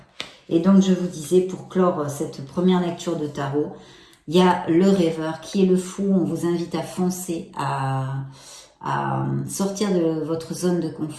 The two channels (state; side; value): identical; both; correlation 1.00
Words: Et donc, je vous disais, pour clore cette première lecture de tarot, il y a le rêveur qui est le fou. On vous invite à foncer, à sortir de votre zone de